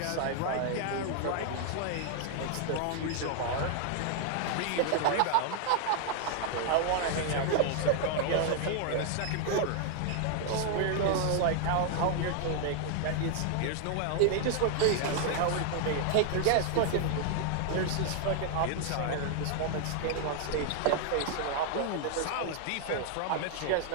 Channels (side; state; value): both; different; correlation 0.00